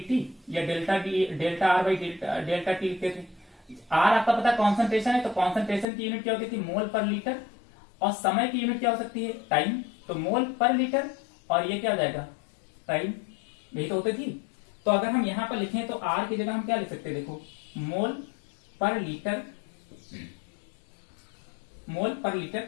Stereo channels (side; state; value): right; drops out; at 5.9 s